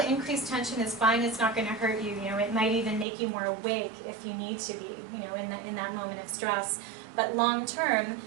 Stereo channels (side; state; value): left; drops out; at 3.1 s